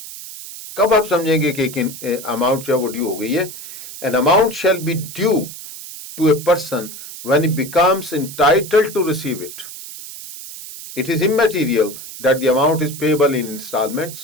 कब आप समझेंगे कि अमाउंट जो है वो ड्यू हो गई है? An amount shall be due to a person when he becomes entitled to receive it. It is immaterial that the amount is payable in installments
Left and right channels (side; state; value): right; noise; hiss, 12 dB below the sound